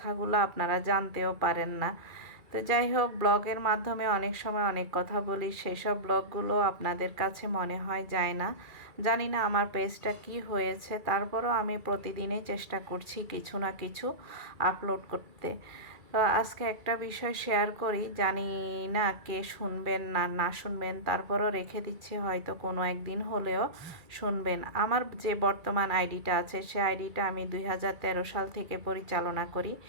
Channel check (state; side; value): late; left; 2.3 ms